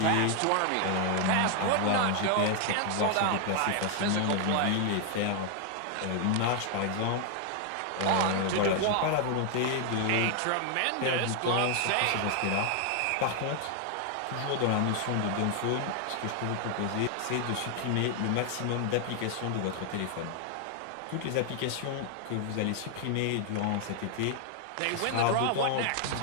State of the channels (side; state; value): both; different; correlation 0.00